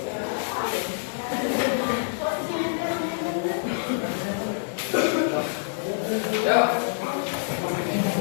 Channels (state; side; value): silent; right; digital silence